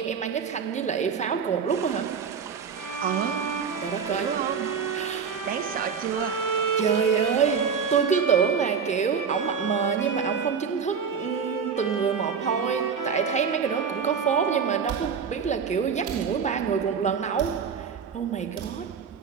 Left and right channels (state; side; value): quieter; left; 6.4 dB